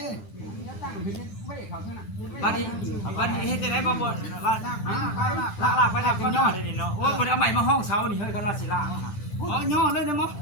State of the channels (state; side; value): late; right; 9.2 ms